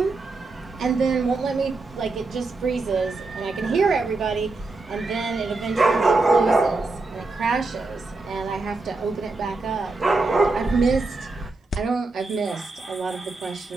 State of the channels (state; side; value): quieter; left; 3.5 dB